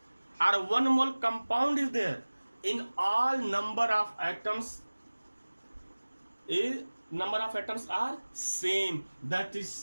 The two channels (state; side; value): inverted; both; correlation -1.00